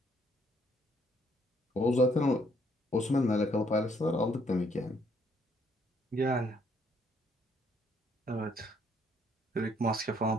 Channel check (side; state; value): both; normal; correlation 0.68